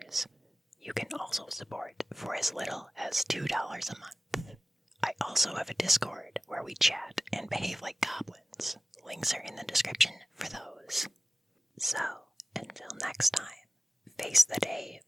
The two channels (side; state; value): both; normal; correlation 0.96